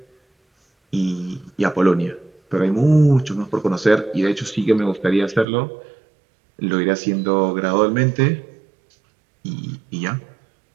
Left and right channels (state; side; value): drops out; left; at 5.5 s